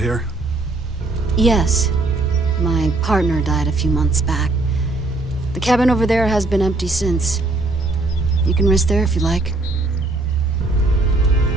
Yes. My partner died a few months back. The cabin over there has been empty since. You can rest there if you like.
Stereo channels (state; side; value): quieter; left; 3.0 dB